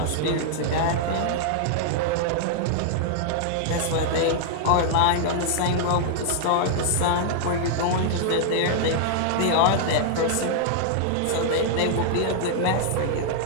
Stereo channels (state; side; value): different; both; correlation -0.01